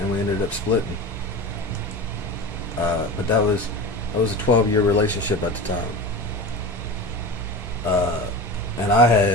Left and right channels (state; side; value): normal; both; correlation 0.29